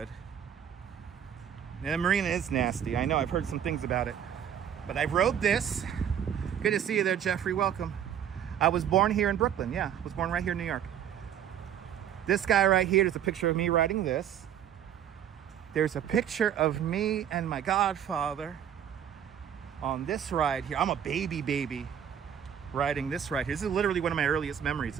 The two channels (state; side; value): quieter; left; 9.4 dB